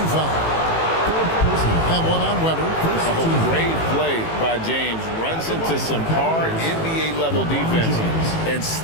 foul. And one on Weber. Oh, great play by James. Runs into some hard NBA-level defense and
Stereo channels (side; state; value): right; late; 18 ms